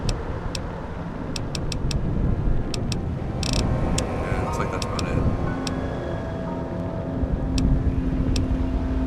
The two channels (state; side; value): identical; both; correlation 1.00